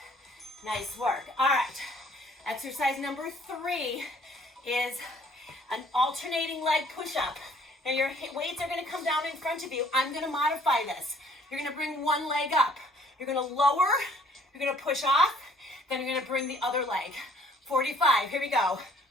Nice work. All right. Exercise number 3 is an alternating leg push-up. Now your weights are going to come down in front of you. I'm going to modify this. You're going to bring one leg up. You're going to lower. You're going to push off. Then you're going to bring the other leg. 45. Here we go.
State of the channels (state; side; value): normal; both; correlation 0.58